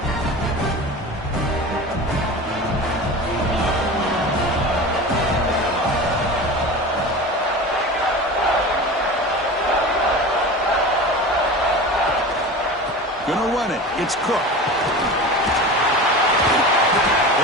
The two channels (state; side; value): normal; both; correlation 0.32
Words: Gonna run it. It's Cook.